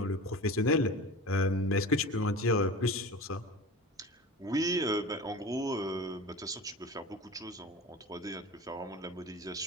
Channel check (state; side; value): normal; both; correlation 0.34